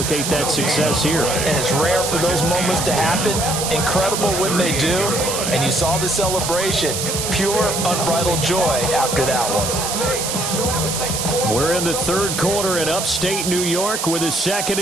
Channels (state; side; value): noise; right; hiss, 2 dB below the sound